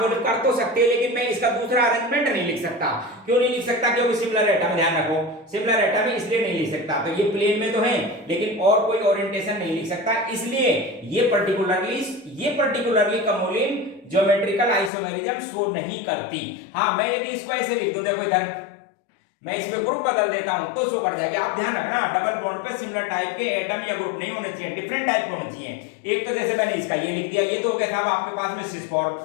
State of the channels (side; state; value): right; drops out; at 14.9 s